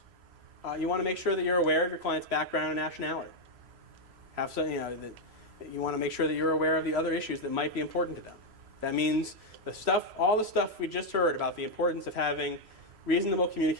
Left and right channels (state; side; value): late; left; 3.0 ms